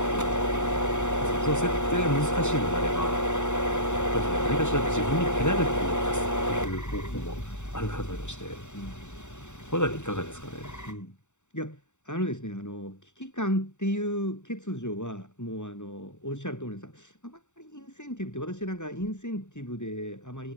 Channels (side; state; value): right; late; 0.84 ms